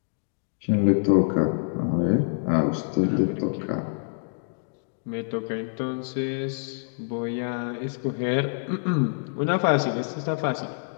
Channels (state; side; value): silent; right; digital silence